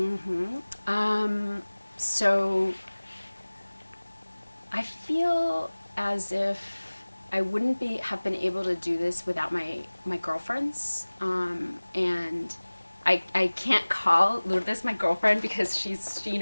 So I feel as if I wouldn't have been able to do this without my girlfriends, and I can't call Lourdes my girlfriend because she's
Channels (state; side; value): inverted; both; correlation -1.00